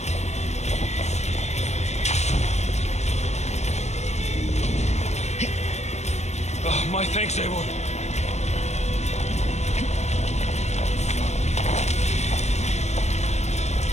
My thanks, Eivor.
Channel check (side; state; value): right; late; 0.32 ms